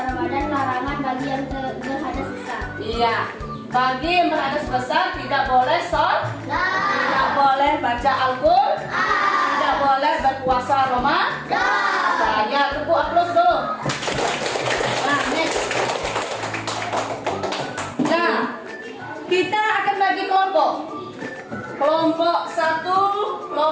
Ramadan. Larangan bagi yang berhadas besar. Iya, bagi yang berhadas besar tidak boleh sholat, tidak boleh baca Al-Quran, tidak boleh berpuasa. puasa Ramadan. Ya, tepuk aplaus dulu. Nah, next. Nah, kita akan bagi kelompok. Kelompok 1,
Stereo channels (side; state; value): both; identical; correlation 1.00